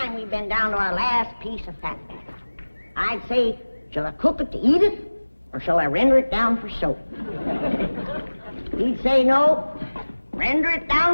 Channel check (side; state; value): both; inverted; correlation -1.00